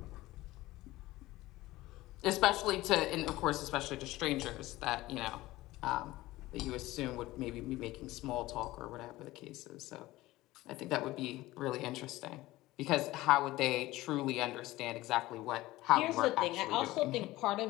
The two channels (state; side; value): quieter; right; 17.9 dB